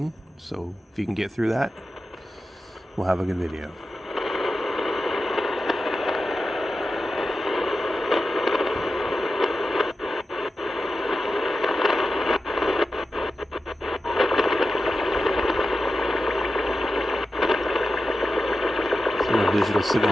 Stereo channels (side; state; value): both; normal; correlation 0.92